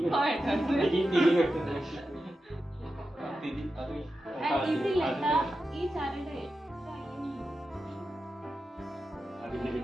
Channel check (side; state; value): both; normal; correlation 0.91